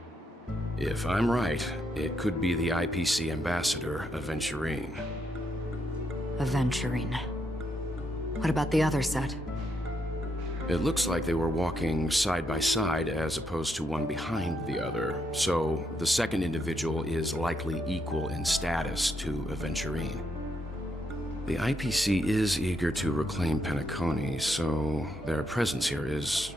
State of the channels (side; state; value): both; normal; correlation 0.78